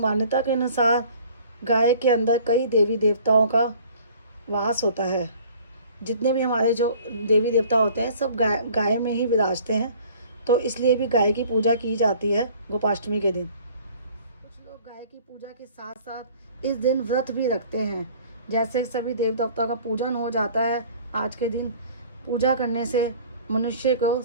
के अनुसार गाय के अंदर कई देवी देवताओं का वास होता है। जितने भी हमारे जो देवी देवता होते हैं सब गाय में ही विराजते हैं, तो इसलिए भी गाय की पूजा की जाती है गोपाष्टमी के दिन। कुछ लोग गाय की पूजा के साथ साथ इस दिन व्रत भी रखते हैं। जैसे सभी देव देवताओं का पूजन हो जाता है आज के दिन, पूजा करने से मनुष्य को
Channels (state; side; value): inverted; both; correlation -0.50